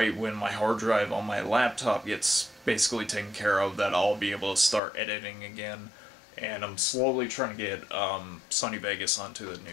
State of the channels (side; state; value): right; drops out; at 4.8 s